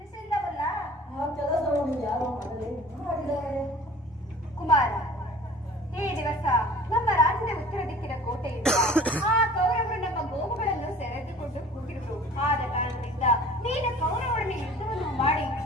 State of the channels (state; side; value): normal; both; correlation 0.46